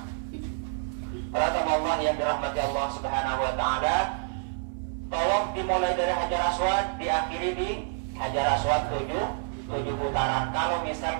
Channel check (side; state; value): left; silent; 57 dB below the other